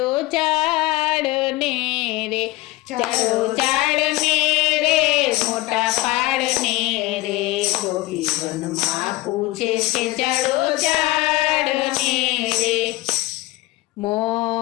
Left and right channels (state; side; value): quieter; right; 19.0 dB